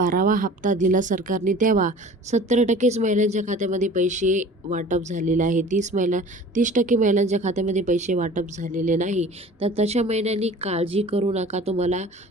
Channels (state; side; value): normal; both; correlation 0.44